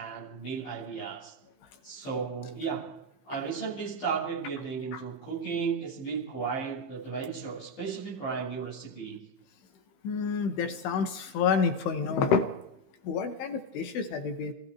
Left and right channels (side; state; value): right; late; 16 ms